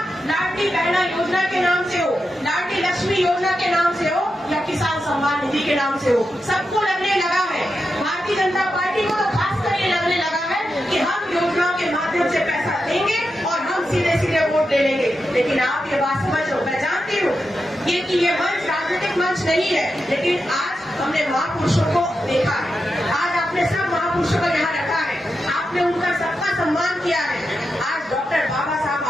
लाडली बहना योजना के नाम से हो, लाडली लक्ष्मी योजना के नाम से हो या किसान सम्मान निधि के नाम से हो। सबको लगने लगा है, भारतीय जनता पार्टी को तो खास कर ये लगने लगा है कि हम योजनाओं के माध्यम से पैसा देंगे और हम सीधे सीधे वोट ले लेंगे। लेकिन आप ये बात समझो, मैं जानती हूँ ये मंच राजनीतिक मंच नहीं है, लेकिन आज हमने महापुरुषों को देखा है, आज आपने सब महापुरुषों को यहाँ रखा है, आपने उनका सबका सम्मान किया है। आज डॉक्टर बाबा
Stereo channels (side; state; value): both; normal; correlation 0.88